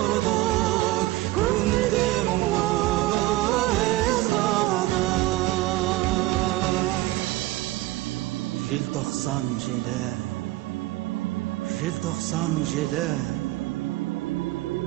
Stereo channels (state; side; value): quieter; left; 17.7 dB